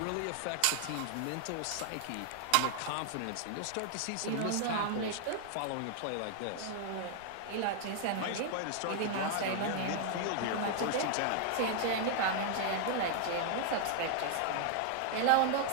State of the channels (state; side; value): different; both; correlation 0.00